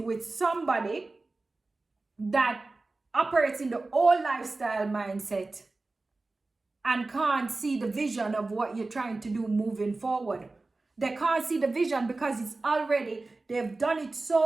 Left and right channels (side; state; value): left; quieter; 3.3 dB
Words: with somebody that operates in the old lifestyle mindset and can't see the vision of what you're trying to do moving forward. They can't see the vision because it's already, they've done it